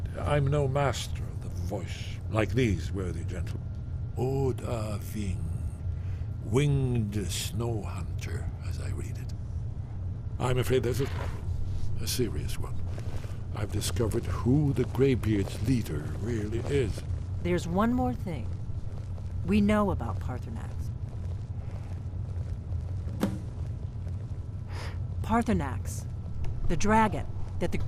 I'm no master of the voice, like these worthy gentlemen. Oda Ving, winged snow hunter, as I read it. I'm afraid there's a problem, a serious one. I've discovered who the Greybeard's leader really is. There's one more thing. We know about Parthenax. Parthenax, the dragon that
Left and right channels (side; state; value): both; identical; correlation 1.00